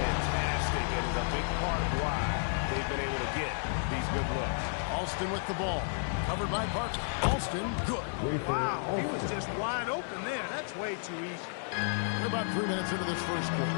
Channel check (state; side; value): silent; right; 56 dB below the other